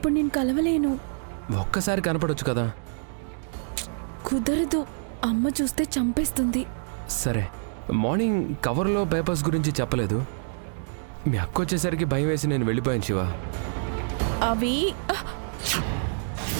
నేను కలవలేను. ఒక్కసారి కనపడొచ్చు కదా. కుదరదు, అమ్మ చూస్తే చంపేస్తుంది. సరే, మార్నింగ్ కవర్లో పేపర్స్ గురించి చెప్పలేదు. మీ అక్క వచ్చేసరికి భయం వేసి నేను వెళ్ళిపోయాను శివ. అవి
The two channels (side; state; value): left; silent; digital silence